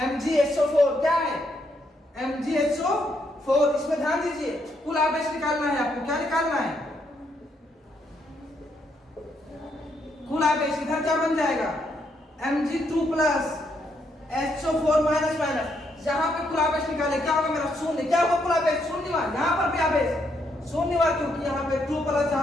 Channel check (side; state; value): both; normal; correlation 0.76